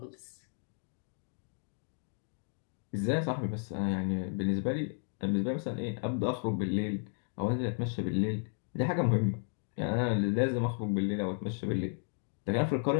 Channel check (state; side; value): silent; right; 55 dB below the other